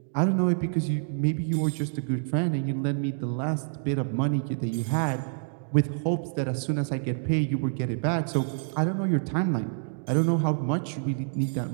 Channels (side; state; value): left; silent; digital silence